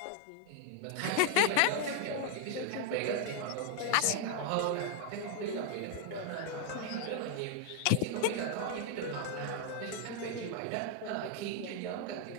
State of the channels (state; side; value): different; both; correlation 0.00